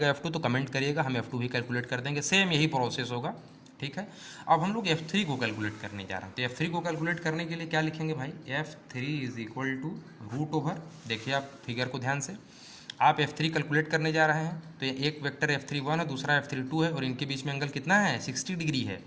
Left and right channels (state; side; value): identical; both; correlation 1.00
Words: F2 तो कमेंट करिएगा, हम F2 भी कैलकुलेट कर देंगे, सेम यही प्रोसेस होगा, ठीक है। अब हम लोग F3 को कैलकुलेट करने जा रहे हैं, तो F3 को कैलकुलेट करने के लिए क्या लिखेंगे भाई F3 is equal to root over, देखिए आप फिगर को ध्यान से, आप F3 कैलकुलेट करने जा रहे हैं तो ये एक वेक्टर F31 है दूसरा F32 है और इनके बीच में एंगल कितना है 60 डिग्री है,